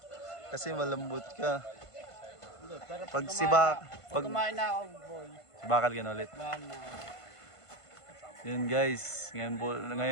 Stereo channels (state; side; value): late; right; 1.5 ms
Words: Kasi malambot ka. Pero Pag si Bakal, pag kumain na ako, boy. si Bakal ka na ulit. Bahan na. Yun guys,